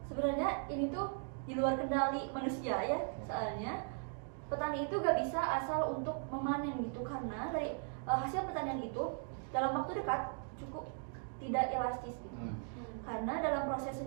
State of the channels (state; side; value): silent; left; 52 dB below the other